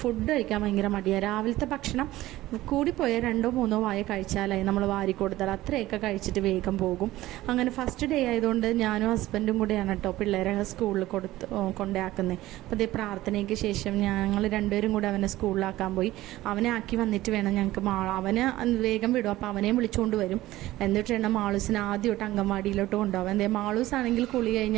ഫുഡ് കഴിക്കാൻ ഭയങ്കര മടിയാണ്. രാവിലത്തെ ഭക്ഷണം കൂടിപ്പോയാൽ 2-3 വായ കഴിച്ചാലായി നമ്മൾ വാരി കൊടുത്താൽ അത്രയൊക്കെ കഴിച്ചിട്ട് വേഗം പോകും. അങ്ങനെ ഫസ്റ്റ് ഡേ ആയതുകൊണ്ട് ഞാനും ഹസ്ബൻഡും കൂടെ കേട്ടോ പിള്ളേരെ സ്കൂളിൽ കൊണ്ടാക്കുന്നത്. അപ്പോൾ അതേ പ്രാർത്ഥനയ്ക്ക് ശേഷം ഞങ്ങൾ 2 പേരും കൂടെ അവനെ സ്കൂളിലാക്കാൻ പോയി. അവനെ ആക്കി വന്നിട്ട് വേണം ഞങ്ങൾക്ക് അവന് വേഗം വിടും. അപ്പോൾ അവനെയും വിളിച്ചുകൊണ്ട് വരും. എന്നിട്ട് വേണം മാളൂസിനെ ആദ്യമായിട്ട് അംഗൻവാടിയിലോട്ട് കൊണ്ടുപോകാൻ. എന്തേ മാളൂസ് ആണെങ്കിൽ കുളി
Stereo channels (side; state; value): left; quieter; 16.4 dB